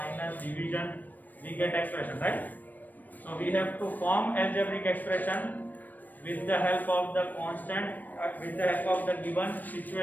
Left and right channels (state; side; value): late; right; 0.086 ms